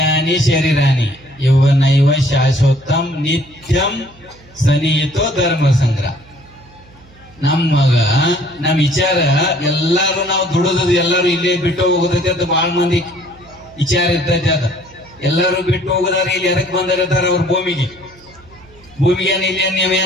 ಶರೀರಾನಿ ಯೌವನೈವ ಶಾಶ್ವತಂ ನಿತ್ಯಂ ಸನಿಹಿತೋ ಧರ್ಮ ಸಂಗ್ರಹ. ನಮ್ಮ ವಿಚಾರ ಎಲ್ಲಾರು ನಾವು ದುಡಿದ್ ಎಲ್ಲಾರು ಇಲ್ಲೇ ಬಿಟ್ಟು ಹೋಗೋದೈತೆ ಅಂತ ಬಹಳ ಮಂದಿ ವಿಚಾರ ಇರ್ತೈತೆ. ಅದ ಎಲ್ಲಾರು ಬಿಟ್ಟು ಹೋಗೋದಾರ ಇಲ್ಲಿ ಎದಕ್ ಬಂದಿರ್ತಾರ ಅವ್ರ ಭೂಮಿಗೆ ಇಲ್ಲಿ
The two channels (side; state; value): right; noise; hum, 26 dB below the sound